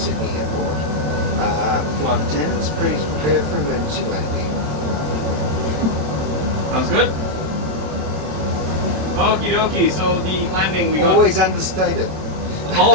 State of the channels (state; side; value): late; left; 27 ms